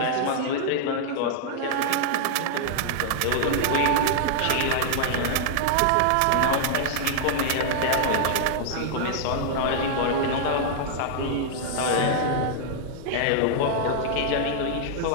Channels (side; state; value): both; different; correlation -0.01